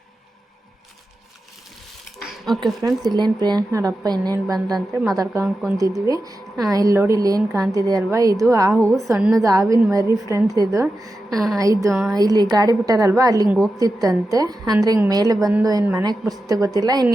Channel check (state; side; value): normal; both; correlation 0.91